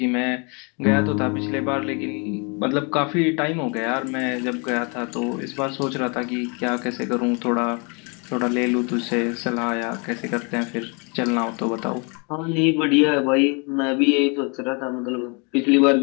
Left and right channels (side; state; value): right; quieter; 33.3 dB